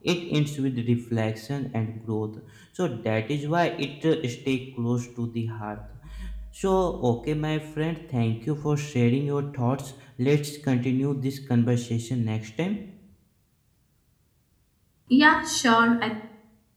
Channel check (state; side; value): identical; both; correlation 1.00